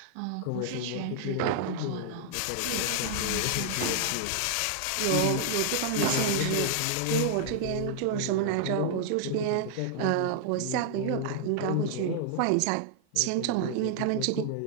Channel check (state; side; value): different; both; correlation -0.01